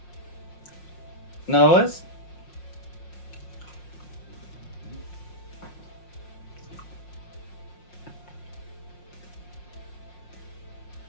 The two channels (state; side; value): late; right; 5.6 ms